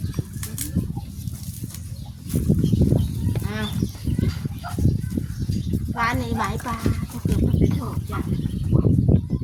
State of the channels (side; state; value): both; identical; correlation 1.00